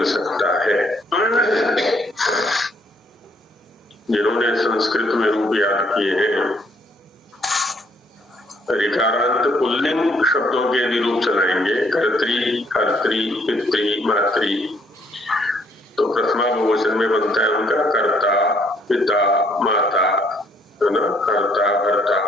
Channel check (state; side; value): normal; both; correlation 0.67